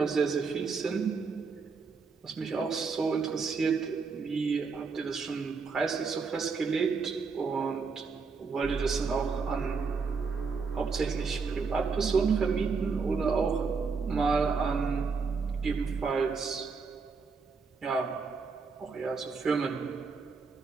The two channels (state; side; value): quieter; left; 5.0 dB